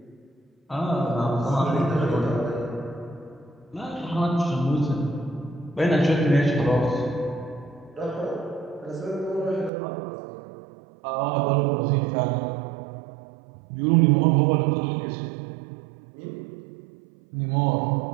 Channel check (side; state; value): left; drops out; at 9.7 s